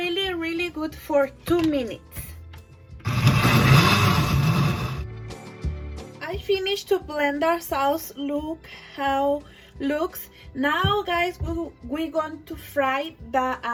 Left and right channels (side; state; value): both; identical; correlation 1.00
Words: good for 2 minutes. I finished to blend our sauce. Look how looks. Now, guys, we're going to fry the